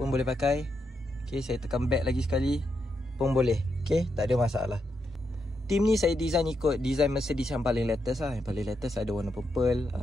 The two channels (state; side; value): normal; both; correlation 0.82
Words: boleh pakai. Okay, saya tekan back lagi sekali pun boleh. Okay, tak ada masalah. Team ni saya design ikut design Mercedes yang paling latest lah. Yang paling latest ada warna purple.